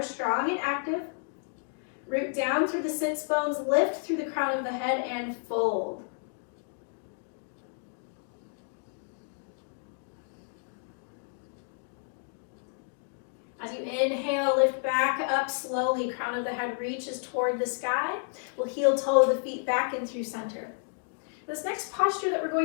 strong and active. Root down through the sits bones, lift through the crown of the head, and fold. As you inhale, lift back up slowly, crown of the head reaches toward the sky. We'll heel toe the feet back in through center. This next posture that we're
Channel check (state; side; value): silent; right; 57 dB below the other